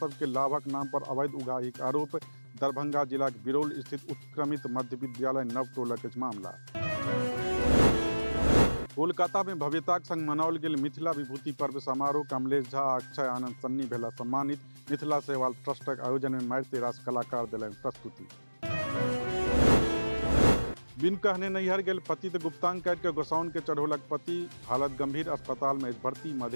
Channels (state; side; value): inverted; both; correlation -1.00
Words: के लाभक नाम पर अवैध उगाहीक आरोप। दरभंगा जिला के बिरौल स्थित उत्क्रमित मध्य विद्यालय नवटोलक मामला। कोलकाता में भव्यताक संग मनाओल गेल मिथिला विभूति पर्व समारोह। कमलेश झा, अक्षय आनंद सन्नी भेला सम्मानित। मिथिला सेवा ट्रस्टक आयोजन में मारिते रास कलाकार देलनि प्रस्तुति। बिन कहने नैहर गेल पति तो गुप्तांग काट के गोसाउन के चढ़ौलक पति। हालत गंभीर, अस्पताल में भर्ती।